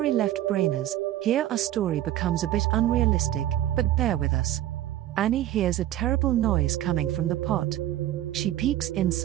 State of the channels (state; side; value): quieter; left; 13.1 dB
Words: left brainers, here our story becomes a bit unrealistic, but bear with us. Annie hears a terrible noise coming from the pot. She peeks